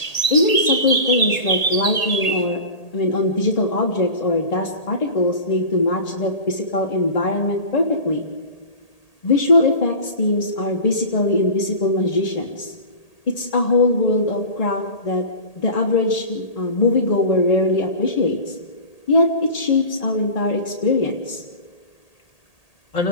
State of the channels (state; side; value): late; right; 1.8 ms